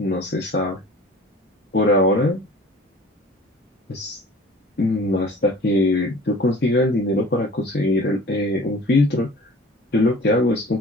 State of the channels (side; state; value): both; normal; correlation 0.45